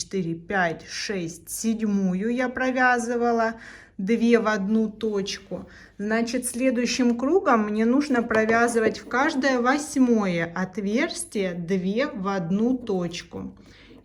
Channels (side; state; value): both; identical; correlation 1.00